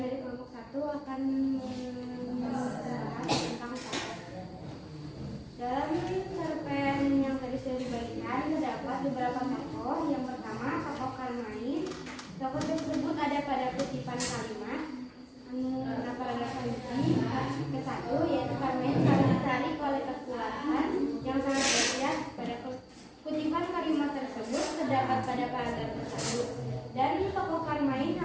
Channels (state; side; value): identical; both; correlation 1.00